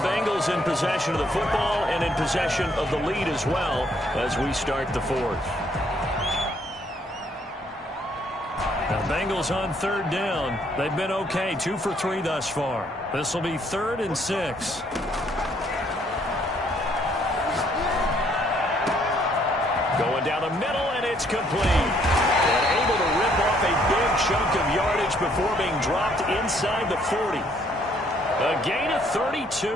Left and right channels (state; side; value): normal; both; correlation 0.67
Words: in possession of the football and in possession of the lead as well as we start the 4th. Now Bengals on 3rd down. They've been okay. 2 for 3 thus far. This will be 3rd and 6. Going down the middle, and it's complete. And able to rip off a big chunk of yardage before being dropped inside the 40. A gain of